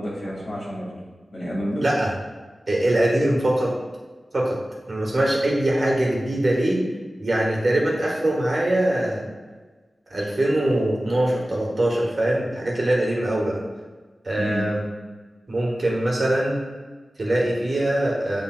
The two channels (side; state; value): both; normal; correlation 0.96